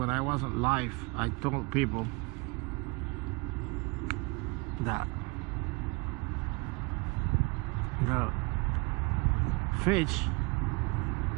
I wasn't live, I told people that the fish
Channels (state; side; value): quieter; left; 27.9 dB